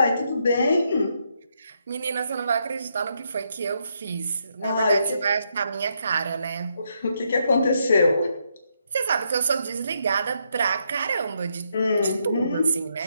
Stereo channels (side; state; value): both; inverted; correlation -0.77